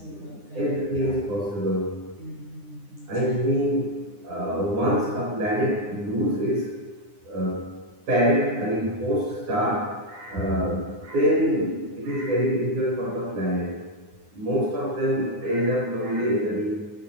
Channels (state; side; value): late; left; 9.8 ms